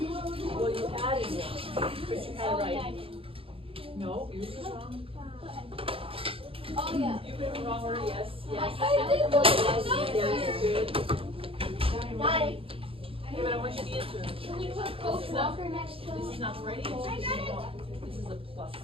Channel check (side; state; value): left; late; 0.27 ms